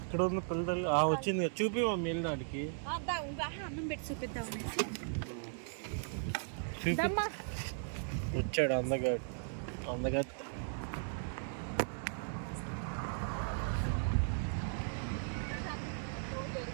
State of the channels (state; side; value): silent; left; 53 dB below the other